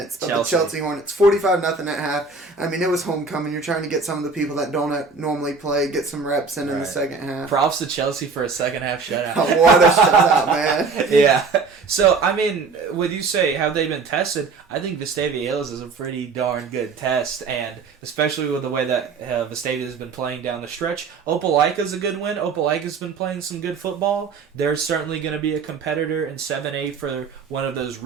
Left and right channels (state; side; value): quieter; left; 4.6 dB